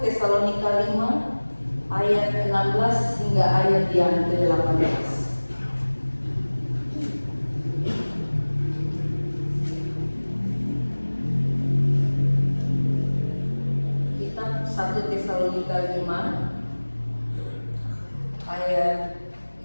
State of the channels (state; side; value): inverted; both; correlation -1.00